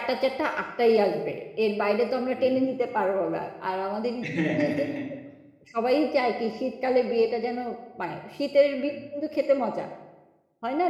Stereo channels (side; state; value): both; identical; correlation 1.00